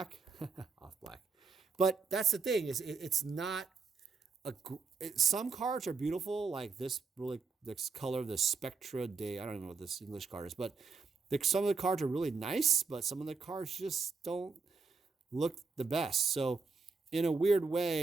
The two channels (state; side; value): quieter; left; 4.6 dB